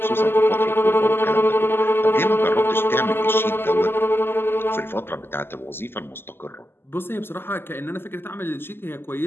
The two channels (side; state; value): right; late; 0.11 ms